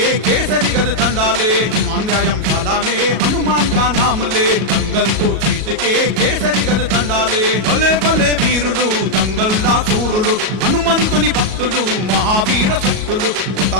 केसरी गद दंडा ले। हनुमान व्यायामशाला में हनुमान का नाम ले, दंगल तो जीत के केसरी गद दंडा ले। भले भले वीरुलु దంగల్లా సూరులు, హనుమంతుని భక్తులు మహావీర శక్తులు, కొత్త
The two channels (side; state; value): left; late; 37 ms